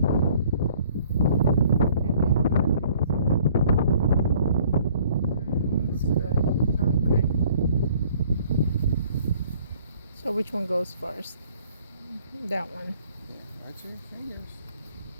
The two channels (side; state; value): both; inverted; correlation -0.57